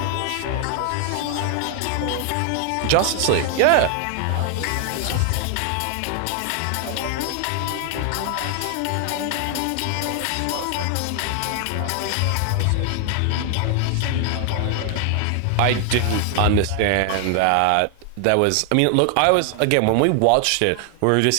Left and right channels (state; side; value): different; both; correlation 0.00